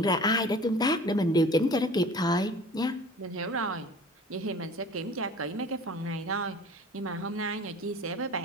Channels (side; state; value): both; normal; correlation 0.44